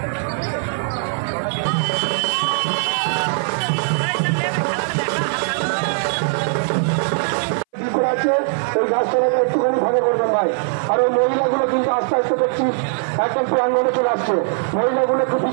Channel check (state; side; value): silent; left; 60 dB below the other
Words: আছে ওই গাছটাকে একটুখানি ফাঁকা করবেন ভাই। আর ওই মহিলাগুলো কিন্তু আস্তে আস্তে দেখছি একদম প্রাঙ্গণে চলে আসছে। মহিলাগুলো একটু